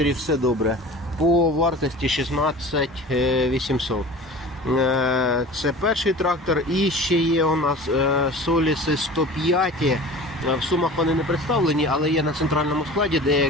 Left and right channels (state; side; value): normal; both; correlation 0.39